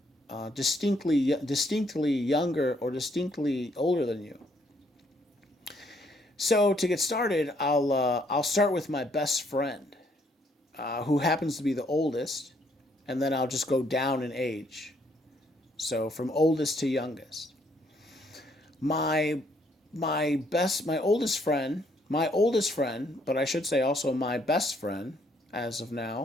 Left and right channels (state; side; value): normal; both; correlation 0.69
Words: distinctly younger or distinctly older than you. So to get started, I'll start with my best friend, who happens to be the oldest, and then I'll just go down in age. So from oldest to youngest. My my oldest friend, but I should say also my best friend as of